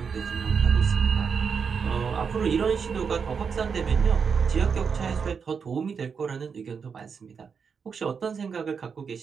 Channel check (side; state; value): left; quieter; 6.1 dB